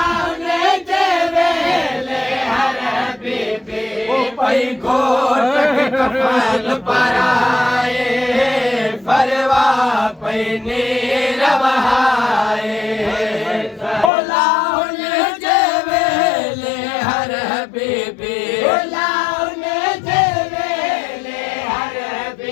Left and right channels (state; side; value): drops out; right; at 14.1 s